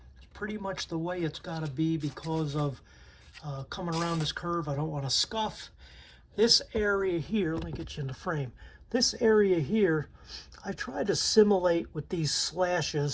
pretty much the way it's got to be because of coming around this curve. I don't want to scuff. This area here, let me get you in the frame. This area here, I try to simulate with these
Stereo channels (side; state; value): both; identical; correlation 1.00